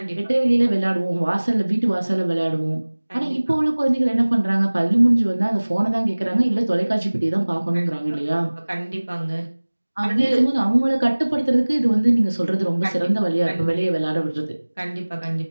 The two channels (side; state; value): both; inverted; correlation -1.00